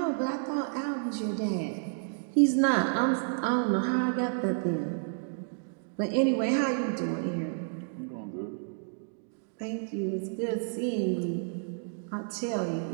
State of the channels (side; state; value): left; silent; digital silence